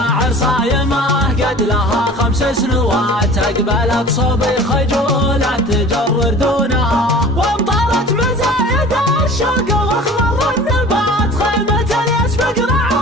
صايمة قد لها 5 سنوات، أقبلت صوبي خجولة تجر دونها، وامطرت مزايد الشوق واخضر النبات، خيمة يسبق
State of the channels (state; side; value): normal; both; correlation 0.42